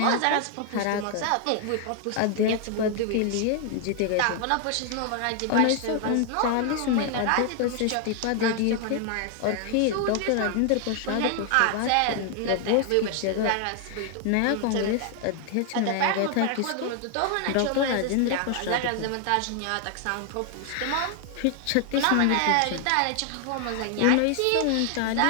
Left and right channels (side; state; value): both; different; correlation 0.00